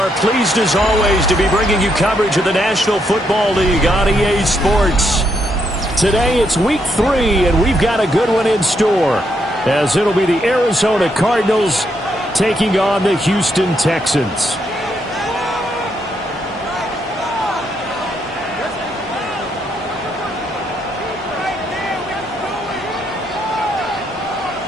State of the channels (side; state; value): both; normal; correlation 0.77